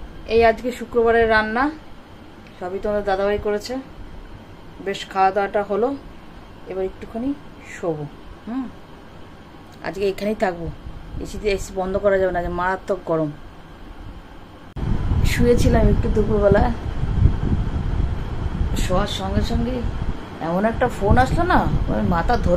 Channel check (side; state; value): both; identical; correlation 1.00